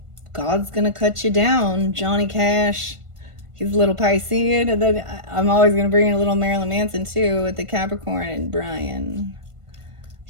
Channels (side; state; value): left; late; 1.5 ms